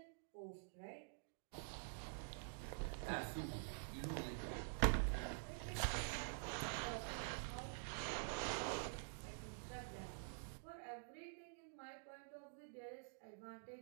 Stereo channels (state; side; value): silent; left; digital silence